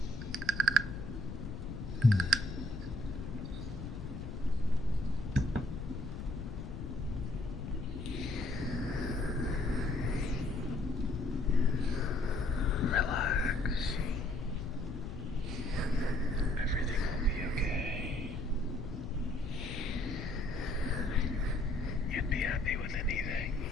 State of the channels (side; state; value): left; noise; rumble, 7 dB below the sound